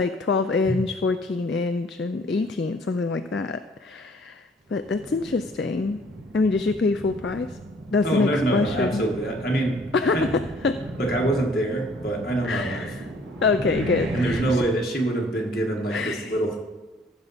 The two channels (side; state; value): both; normal; correlation 0.58